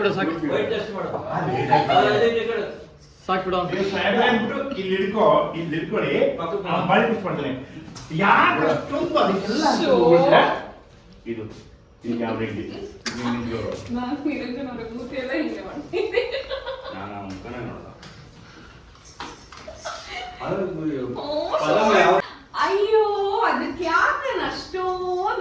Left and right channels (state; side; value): identical; both; correlation 1.00